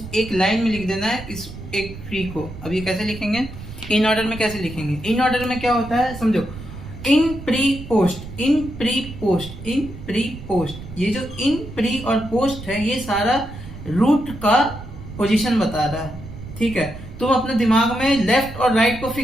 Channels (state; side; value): noise; right; rumble, 13 dB below the sound